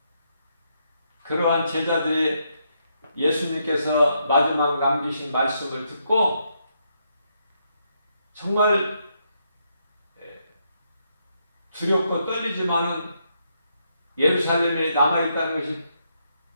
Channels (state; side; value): inverted; both; correlation -0.78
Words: 그러한 제자들이 예수님께서 마지막 남기신 말씀을 듣고 정말 두렵고 떨리지만은 예루살렘에 남아있다는 것이